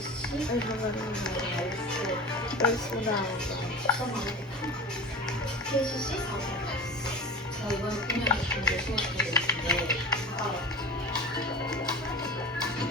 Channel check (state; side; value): normal; both; correlation 0.33